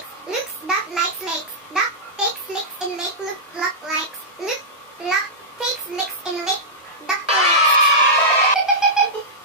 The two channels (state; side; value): normal; both; correlation -0.12